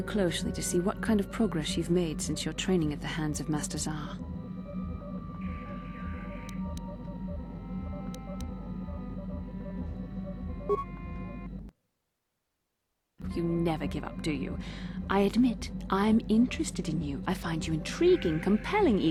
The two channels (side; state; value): both; identical; correlation 1.00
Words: closely to see what kind of progress you've made since your training at the hands of Master Zar. You never give up, do you? I admit, I'm interested in you. I find you intriguing, compelling